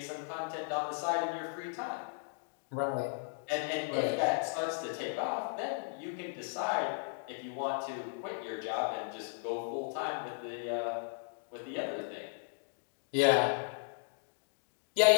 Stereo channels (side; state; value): right; silent; digital silence